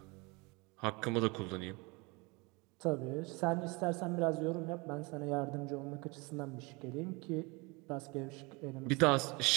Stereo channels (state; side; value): quieter; left; 27.3 dB